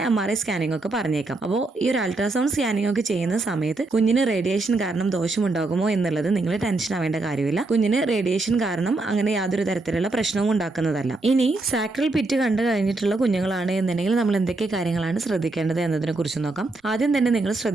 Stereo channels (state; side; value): quieter; left; 3.2 dB